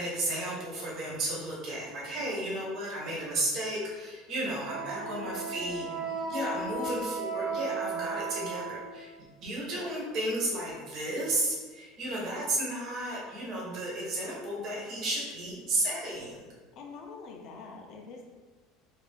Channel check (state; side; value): normal; both; correlation 0.41